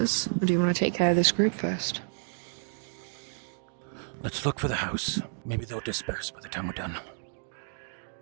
or do you want to take care of this group first? Let's look for the house. Maybe they'll disperse by the time we're done.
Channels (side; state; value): left; silent; digital silence